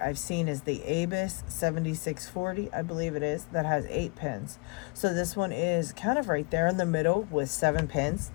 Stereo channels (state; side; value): quieter; right; 30.5 dB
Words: I've seen is the Abus 7640, I believe it is, that has 8 pins. So this one is kind of right there in the middle with 7 pins.